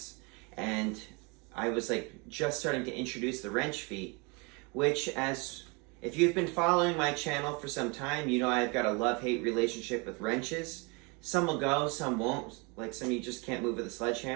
and I was like just starting to introduce the wrench feat, which, as if you've been following my channel for some time, you know I've got a love-hate relationship with wrenches. Some will go, some won't. Like some you just can't move with a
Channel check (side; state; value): left; quieter; 30.0 dB